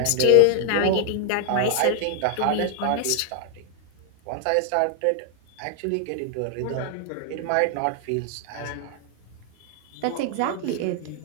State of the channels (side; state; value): both; different; correlation 0.00